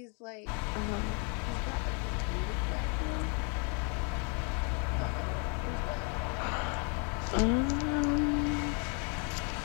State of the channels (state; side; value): quieter; right; 34.9 dB